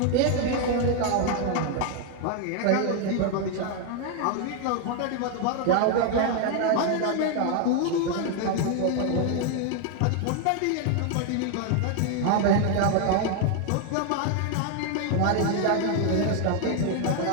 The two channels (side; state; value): both; different; correlation 0.00